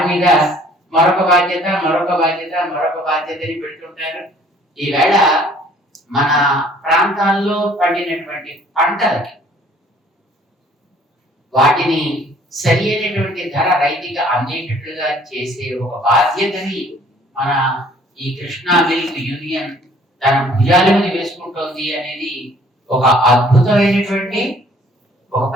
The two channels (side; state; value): both; normal; correlation 0.57